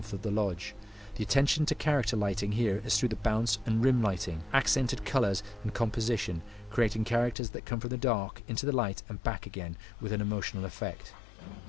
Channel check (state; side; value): drops out; right; at 7.4 s